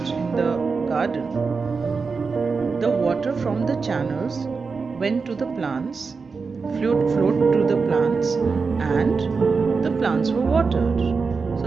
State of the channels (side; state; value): left; quieter; 4.8 dB